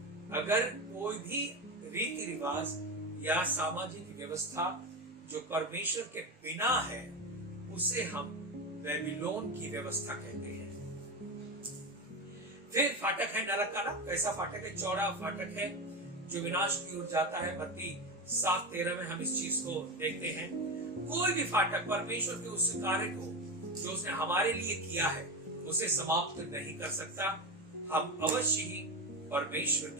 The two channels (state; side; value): normal; both; correlation 0.18